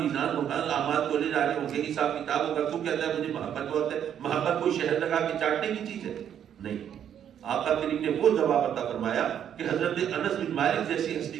ہوگا، اعمال تولے جا رہے ہوں گے، حساب کتاب ہوگا، تو کہتا ہے مجھے محبت بہت ہے. محبت کوئی شہد لگا کے چاٹنے کی چیز ہے؟ نہیں. آقا کریم نے وہ جواب عطا فرمایا کہ حضرت انس بن مالک جیسی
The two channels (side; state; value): left; quieter; 9.4 dB